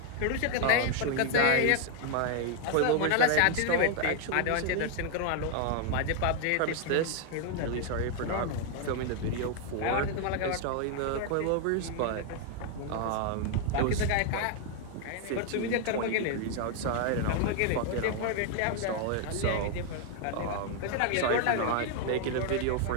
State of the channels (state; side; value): different; both; correlation 0.00